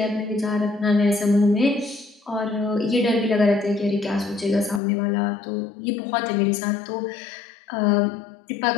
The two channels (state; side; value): drops out; right; at 4.8 s